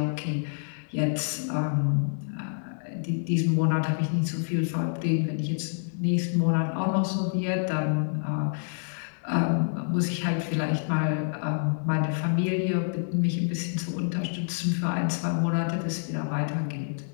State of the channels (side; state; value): right; silent; digital silence